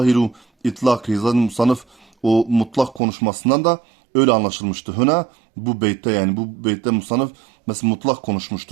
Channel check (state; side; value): drops out; left; at 3.0 s